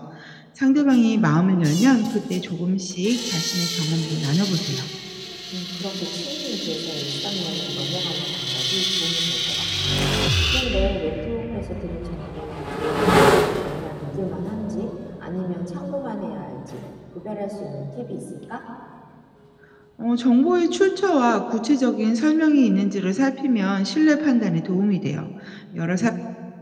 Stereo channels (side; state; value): both; identical; correlation 1.00